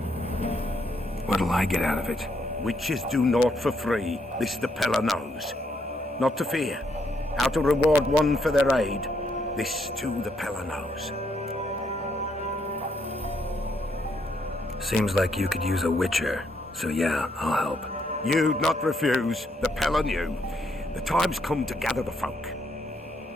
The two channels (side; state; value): both; normal; correlation 0.74